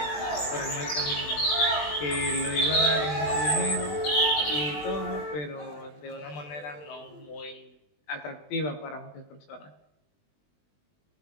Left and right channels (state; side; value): late; right; 20 ms